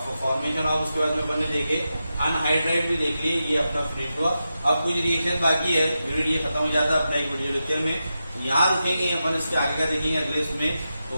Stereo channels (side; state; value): both; inverted; correlation -0.90